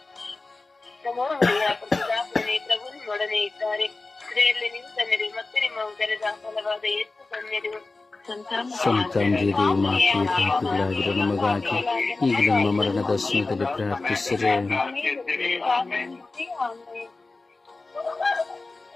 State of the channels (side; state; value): right; quieter; 3.5 dB